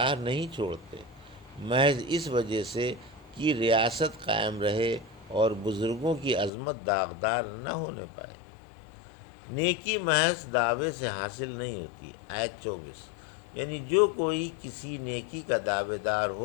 نہیں چھوڑتے، محض اس وجہ سے کہ ریاست قائم رہے اور بزرگوں کی عظمت داغدار نہ ہونے پائے۔ نیکی محض دعوے سے حاصل نہیں ہوتی، آیت 24، یعنی جو کوئی کسی نیکی کا دعوے دار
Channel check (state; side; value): drops out; right; at 6.5 s